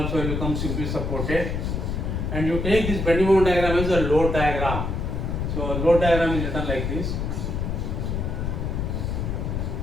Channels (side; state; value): left; noise; rumble, 1 dB below the sound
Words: will become simply supported. And you take this bending moment diagram as a load diagram. So load diagram is written like this.